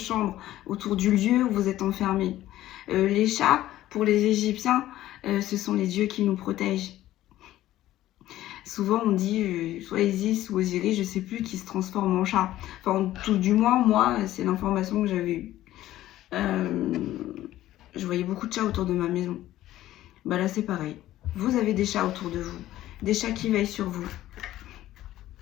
autour du lieu où vous êtes enfermé. Les chats, pour les Égyptiens, ce sont les dieux qui nous protègent. Souvent on dit soit Isis ou Osiris, je ne sais plus, qui se transforme en chat. Enfin, tout du moins, moi, c'est l'information que j'avais eue. Je voyais beaucoup de chats autour de ma maison. Bah là c'est pareil. Vous avez des chats autour de vous. Des chats qui veillent sur vous.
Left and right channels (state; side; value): quieter; right; 14.3 dB